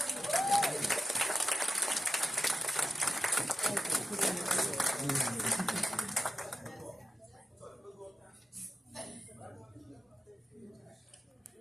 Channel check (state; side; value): normal; both; correlation 0.92